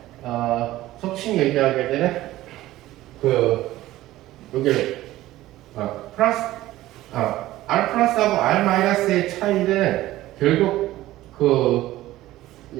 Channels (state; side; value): quieter; left; 15.9 dB